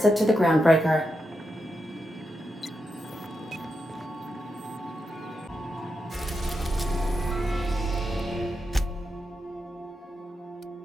to the groundbreaker.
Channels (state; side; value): normal; both; correlation 0.86